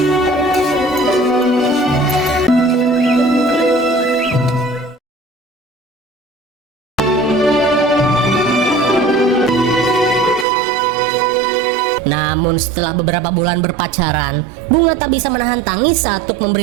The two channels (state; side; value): drops out; left; at 10.5 s